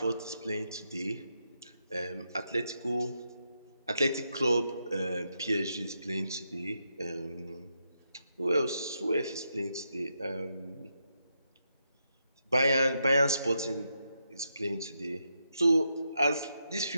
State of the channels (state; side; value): inverted; both; correlation -0.83